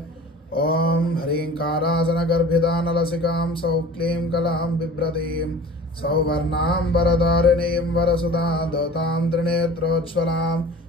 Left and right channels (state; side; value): normal; both; correlation 0.42